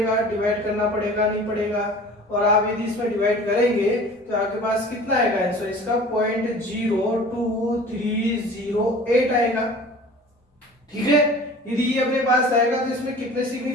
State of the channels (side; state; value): both; normal; correlation 0.43